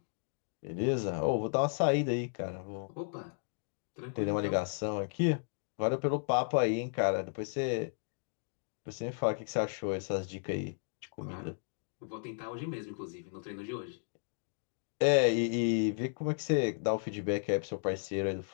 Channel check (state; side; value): silent; right; digital silence